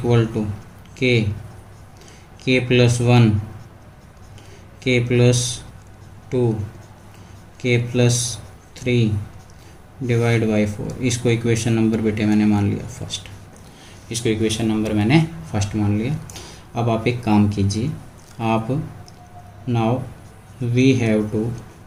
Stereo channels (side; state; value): both; identical; correlation 1.00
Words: to k plus 1 k plus 2 k plus 3 divide by 4। इसको equation number बेटे मैंने मान लिया फर्स्ट, इसको इक्वेशन नंबर मैंने फर्स्ट मान लिया। अब आप एक काम कीजिए, आप now we have to